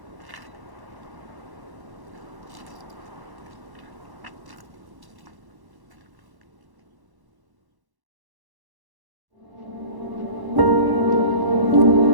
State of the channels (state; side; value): late; left; 1.1 ms